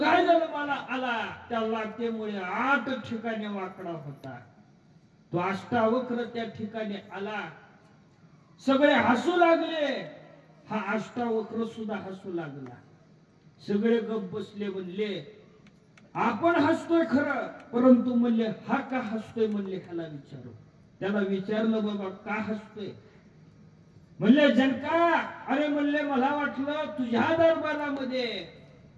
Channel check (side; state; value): both; identical; correlation 1.00